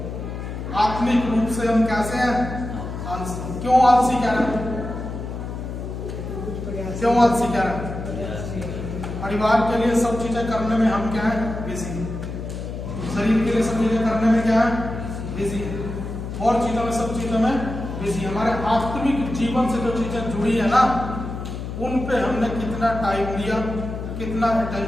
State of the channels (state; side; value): noise; left; hum, 7 dB below the sound